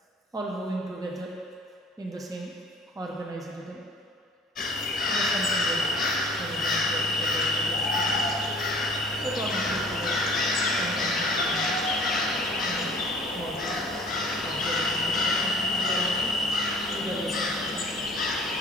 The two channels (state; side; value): normal; both; correlation 0.48